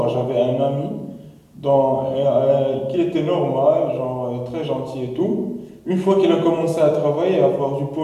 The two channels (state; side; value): identical; both; correlation 1.00